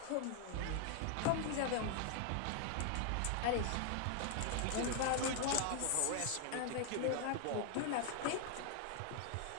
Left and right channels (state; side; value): different; both; correlation 0.00